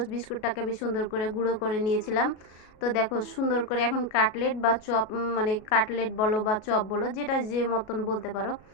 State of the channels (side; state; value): right; late; 37 ms